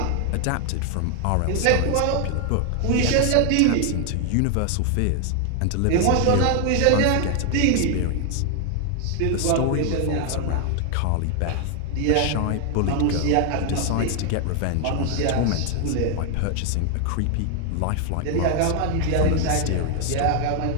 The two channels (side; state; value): both; different; correlation 0.00